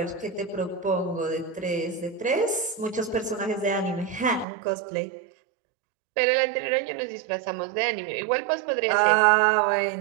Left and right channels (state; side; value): drops out; left; at 4.5 s